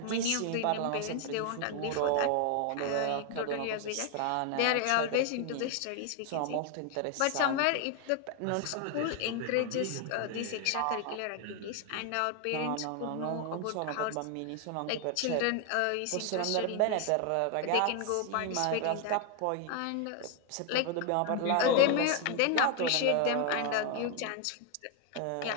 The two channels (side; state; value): both; different; correlation 0.01